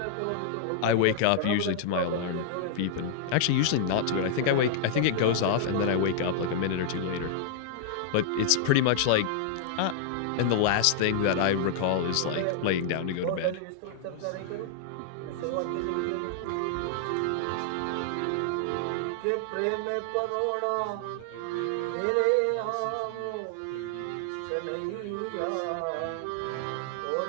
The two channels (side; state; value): both; different; correlation -0.01